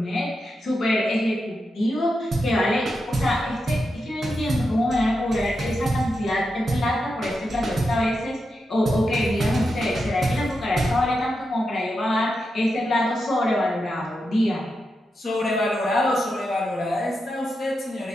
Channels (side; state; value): both; normal; correlation 0.87